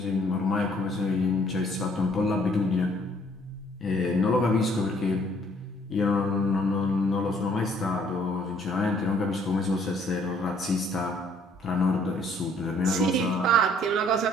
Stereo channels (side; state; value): both; normal; correlation 0.61